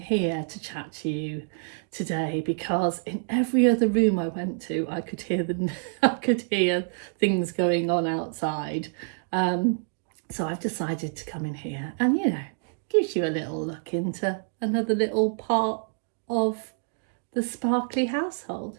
to chat to you today because in every other room I went to, I could hear things going on outside. So I've decided to come in here and, gives you a little look into another little part of the sparkly household.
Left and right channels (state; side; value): silent; left; digital silence